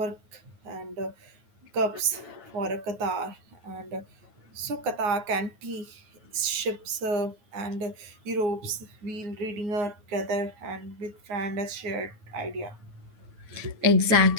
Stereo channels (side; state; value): left; late; 9.3 ms